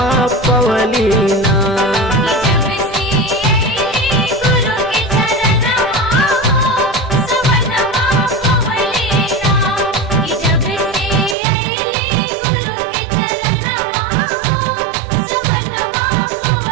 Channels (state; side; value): drops out; left; at 11.4 s